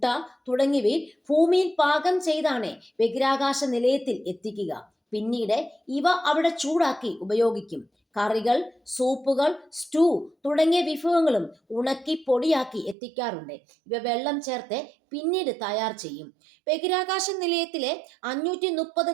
തുടങ്ങിയവയിൽ ഭൂമിയിൽ പാകം ചെയ്താണ് ബഹിരാകാശ നിലയത്തിൽ എത്തിക്കുക. പിന്നീട് ഇവ അവിടെ ചൂടാക്കി ഉപയോഗിക്കും. കറികൾ, സൂപ്പുകൾ, സ്റ്റൂ തുടങ്ങിയ വിഭവങ്ങളും ഉണക്കി പൊടിയാക്കി എത്തിക്കാറുണ്ട്. ഇവ വെള്ളം ചേർത്ത് പിന്നീട് തയ്യാർ ചെയ്യും. ബഹിരാകാശ നിലയത്തിലെ 530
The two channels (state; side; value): drops out; left; at 13.0 s